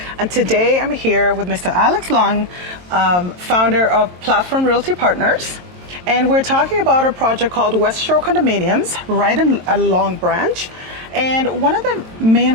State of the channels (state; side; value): late; left; 22 ms